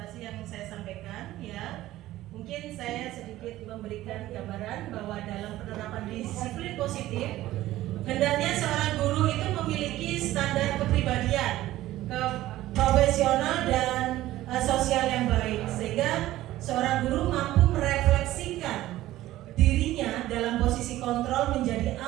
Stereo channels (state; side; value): quieter; left; 15.4 dB